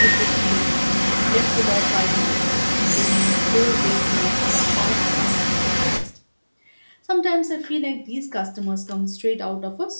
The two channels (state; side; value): inverted; both; correlation -1.00